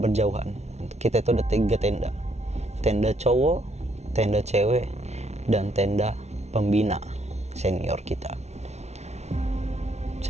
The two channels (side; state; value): left; late; 0.32 ms